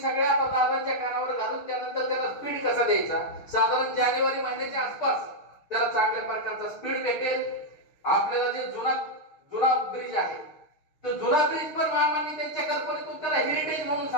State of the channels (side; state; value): right; late; 6.5 ms